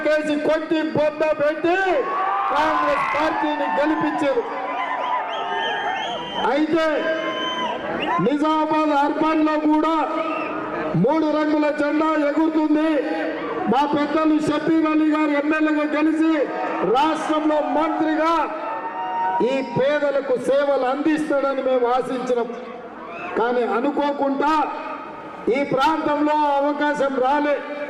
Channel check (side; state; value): both; identical; correlation 1.00